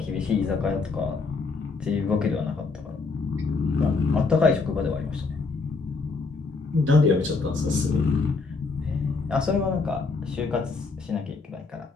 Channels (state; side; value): quieter; right; 4.3 dB